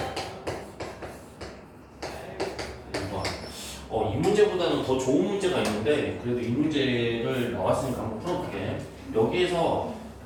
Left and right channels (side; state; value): both; identical; correlation 1.00